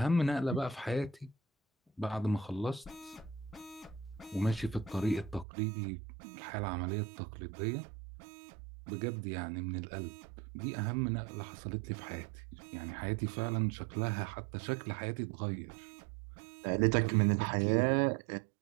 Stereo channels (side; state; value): left; drops out; at 5.5 s